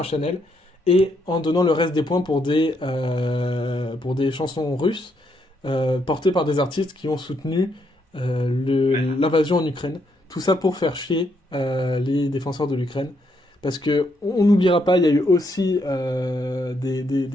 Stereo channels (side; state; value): both; normal; correlation 0.75